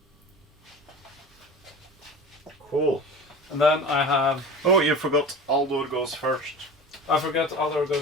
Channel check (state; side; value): normal; both; correlation 0.35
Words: Cool. And then I have. Oh, you forgot Aldor goes first. I forget Aldor